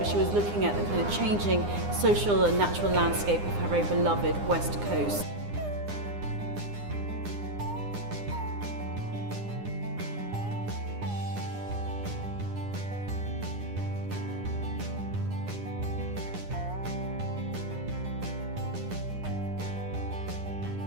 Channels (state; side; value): late; left; 9.8 ms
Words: she was looking at the kind of changing social and natural landscape of her very beloved West Coast.